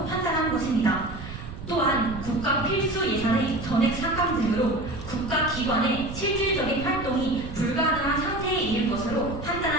판단한 것입니다. 또한 국가 필수 예산의 전액 삭감 등으로 국가기관의 실질적인 활동이 불가능한 상태에 이를 것으로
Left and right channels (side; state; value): right; noise; rumble, 10 dB below the sound